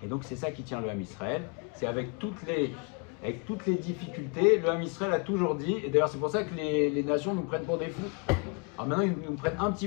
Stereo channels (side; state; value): right; quieter; 32.7 dB